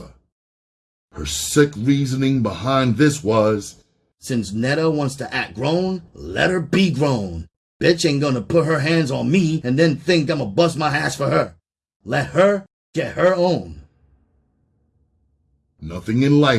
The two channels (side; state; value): both; identical; correlation 1.00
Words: Her sick reasoning behind this was, since Netta wants to act grown, let her be grown. Bitch ain't gonna put her hands on me and then think I'ma bust my ass for her. Let her get her own. Nothing in